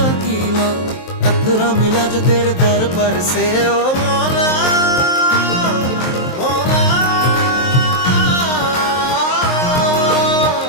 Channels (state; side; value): late; right; 23 ms